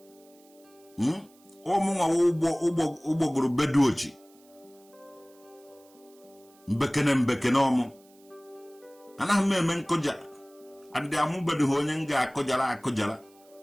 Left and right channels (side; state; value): right; noise; hiss, 29 dB below the sound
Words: Ọmụnwa ụgbọgụrụ beduochi. Mbekene ọmụ. Anaghị m eme nkụja. Adị amụbedu ha onye m ga-akụjara.